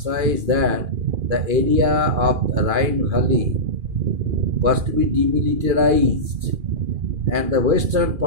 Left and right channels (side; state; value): left; late; 2.4 ms